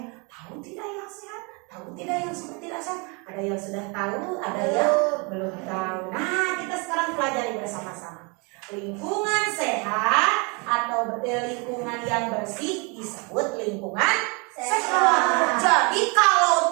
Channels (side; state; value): left; quieter; 31.4 dB